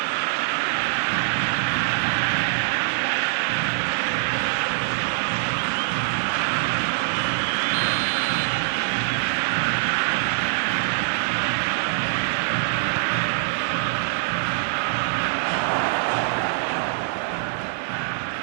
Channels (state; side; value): silent; left; 63 dB below the other